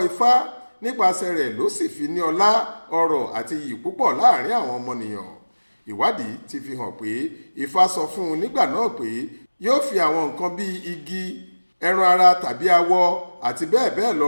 Ifá, nípasẹ̀ rẹ̀ ló sì fi ní ọlá, ọrọ̀ àti iyì púpọ̀ láàrin àwọn ọmọnìyàn. Ìwádìí ti fi hàn pé Ifá sọ fún un nígbà náà pé yóò fi àwọn nǹkan bíi igi, ẹran ara tàbí awọ àti bẹ́ẹ̀ bẹ́ẹ̀ lọ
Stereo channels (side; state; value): both; inverted; correlation -1.00